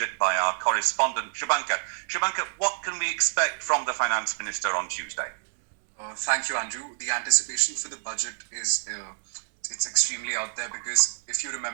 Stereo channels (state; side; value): silent; left; digital silence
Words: by our correspondent, Shubhankar. Shubhankar, what can we expect from the Finance Minister on Tuesday? Thank you, Andrew. The anticipation for the budget is it's extremely out there because if you